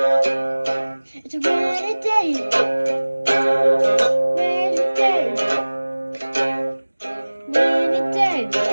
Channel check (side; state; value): both; inverted; correlation -1.00